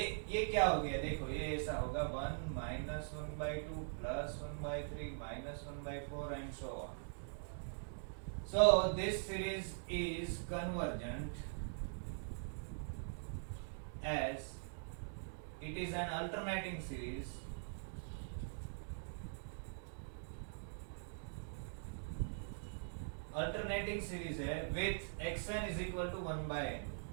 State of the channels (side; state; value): left; silent; digital silence